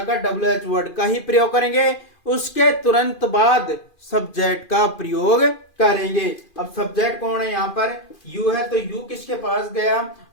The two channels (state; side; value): late; right; 2.4 ms